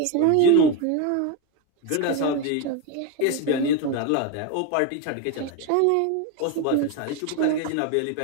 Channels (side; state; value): both; different; correlation 0.03